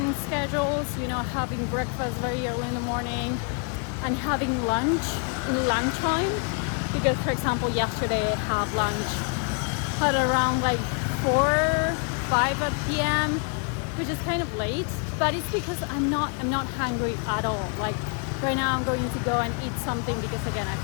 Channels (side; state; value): right; quieter; 38.6 dB